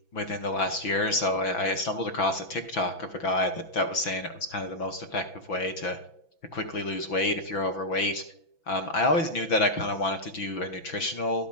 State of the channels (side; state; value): right; late; 6.0 ms